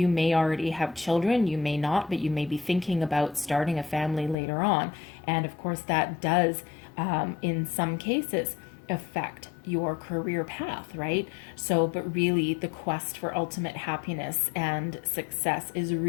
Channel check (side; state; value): right; drops out; at 4.4 s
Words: may already have children, you may not, but you may be thinking about starting a family later on. And of course that does, in some cases, affect your career path, right? So, but really the quest for ultimate happiness and success is